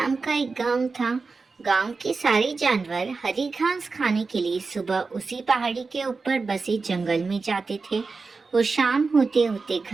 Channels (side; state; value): left; quieter; 4.3 dB